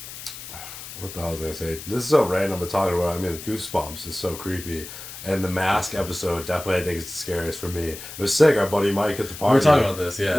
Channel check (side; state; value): left; noise; hiss, 12 dB below the sound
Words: What the hell was I gonna say? This is so random, but talking about. I mean, Goosebumps is so creepy, and the Mask episode definitely I think is the scariest for me. It was sick. Our buddy Mike at the party. We were talking about this, yeah.